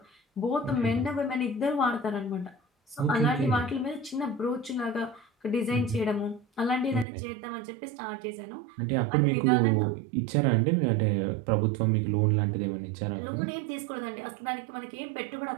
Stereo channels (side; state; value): left; drops out; at 7.1 s